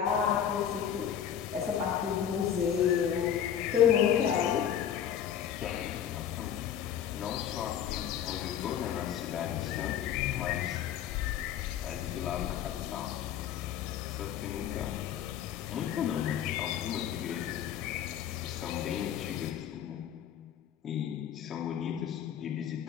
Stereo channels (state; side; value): quieter; right; 9.4 dB